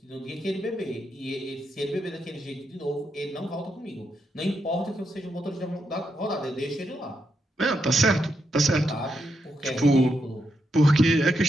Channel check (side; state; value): both; normal; correlation 0.82